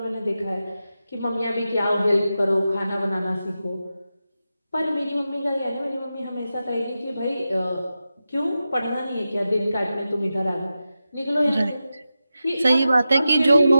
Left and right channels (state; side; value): inverted; both; correlation -0.91